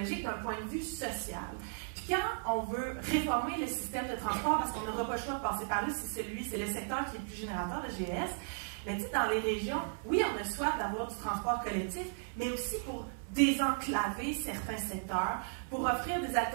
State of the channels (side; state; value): left; silent; 54 dB below the other